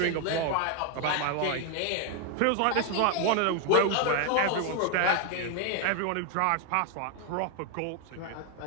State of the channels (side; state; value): both; different; correlation 0.01